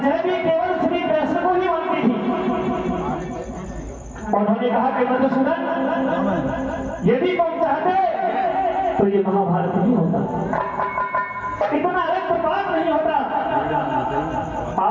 भी केवल श्री कृष्ण को ही मानती थी। उन्होंने कहा कि मधुसूदन, यदि तुम चाहते तो ये महाभारत नहीं होता, इतना रक्तपात नहीं होता।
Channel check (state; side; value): identical; both; correlation 1.00